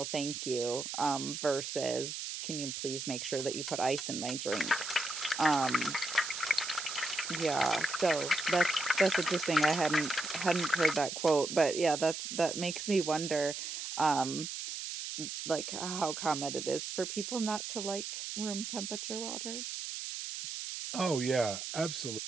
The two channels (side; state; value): right; noise; hiss, 6 dB below the sound